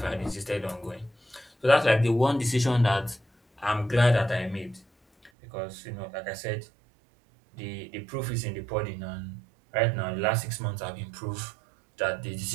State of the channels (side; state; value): left; drops out; at 5.3 s